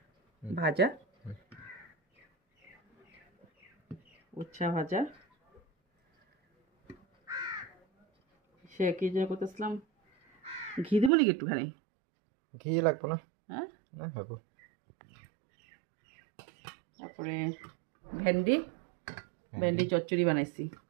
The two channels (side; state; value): left; drops out; at 11.1 s